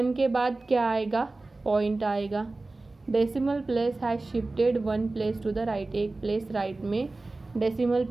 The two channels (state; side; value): quieter; left; 3.2 dB